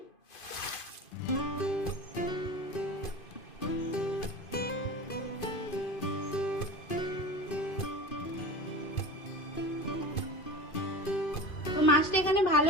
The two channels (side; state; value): right; late; 2.5 ms